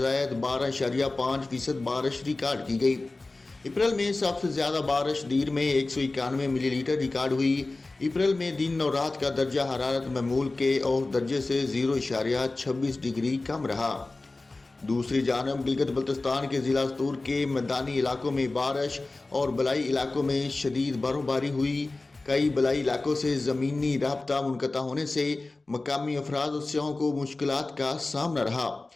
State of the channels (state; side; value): quieter; right; 3.2 dB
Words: 12.5% बारिश रिकॉर्ड की गई। अप्रैल में सबसे ज़्यादा बारिश दीर में 191 मिलीलीटर रिकॉर्ड हुई। अप्रैल में दिन और रात का दर्जा हरारत मामूल के और दर्जे से 0.26 डिग्री कम रहा। दूसरी जानब गिलगित बल्तिस्तान के ज़िला सतूर के मैदानी इलाकों में बारिश और बलाई इलाकों में शदीद बर्फबारी हुई। कई बलाई इलाकों से ज़मीनी राब्ता मुनक़ता होने से मकामी अफराद और सियाहों को मुश्किलात का सामना रहा।